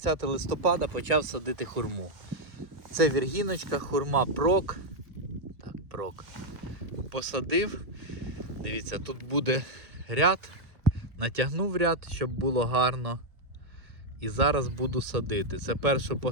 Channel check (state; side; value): late; left; 1.5 ms